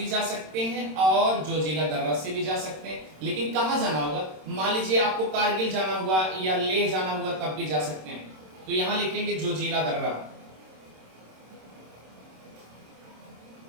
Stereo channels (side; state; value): left; late; 26 ms